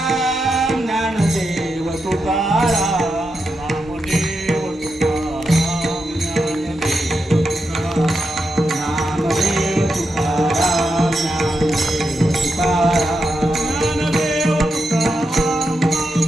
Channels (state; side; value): normal; both; correlation 0.86